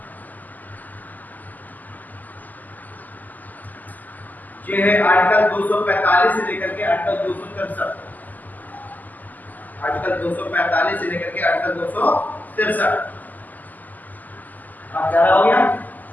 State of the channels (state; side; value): late; right; 0.083 ms